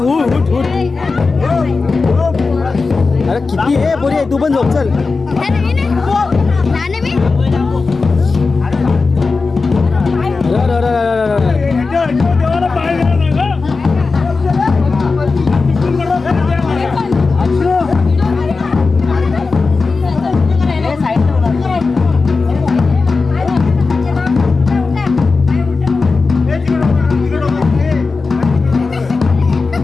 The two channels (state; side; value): quieter; right; 4.2 dB